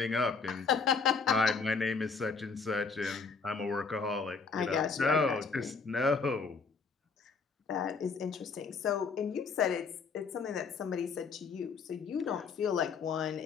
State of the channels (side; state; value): right; quieter; 5.0 dB